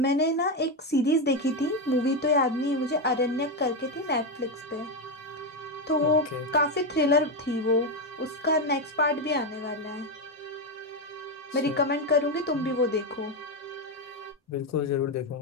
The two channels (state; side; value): normal; both; correlation 0.08